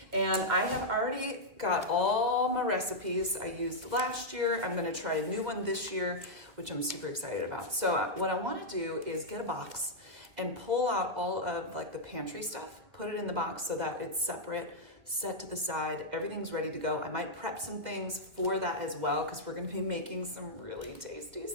And I have already got all my recipes I used last year. I'm going to try a new one this year, which I'm super excited about. So what I want to do is get a box and pull out all of like the pantry stuff, put it in the box so that it's separate, set to the side, everything's ready to go. I might prep some things for that as well because we're gonna be making some really tasty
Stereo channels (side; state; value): left; late; 2.4 ms